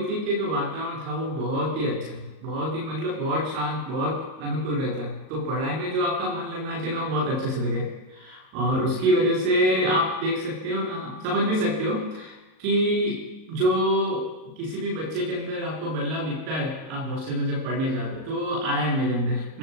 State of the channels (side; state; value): left; late; 38 ms